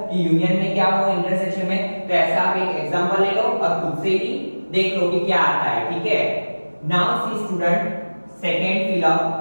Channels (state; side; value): inverted; both; correlation -1.00